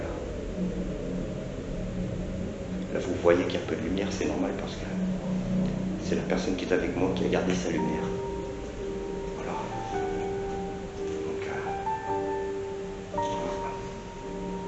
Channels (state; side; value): identical; both; correlation 1.00